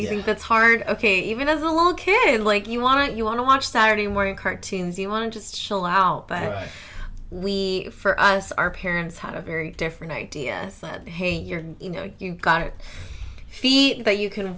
You think that's hard. Okay, even as a little kid, like, you wanna watch Saturday morning cartoons. You want to just chill out. But for us, our parents had a very different idea. Said, hey, you've got it. Feet that you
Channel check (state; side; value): identical; both; correlation 1.00